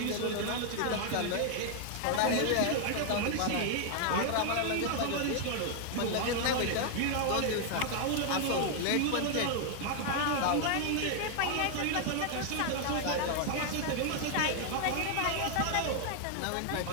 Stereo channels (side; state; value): both; different; correlation 0.00